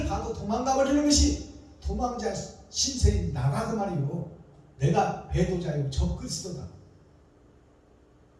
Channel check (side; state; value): both; identical; correlation 1.00